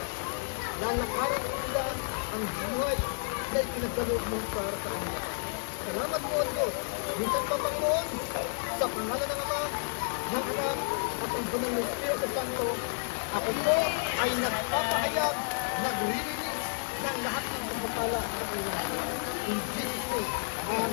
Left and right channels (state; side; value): silent; right; digital silence